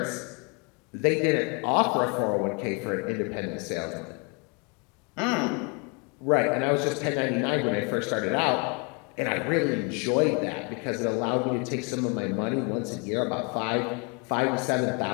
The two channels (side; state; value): right; quieter; 33.5 dB